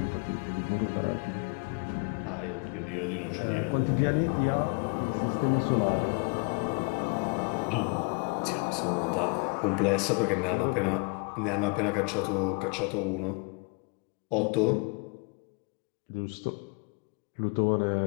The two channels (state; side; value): quieter; right; 33.6 dB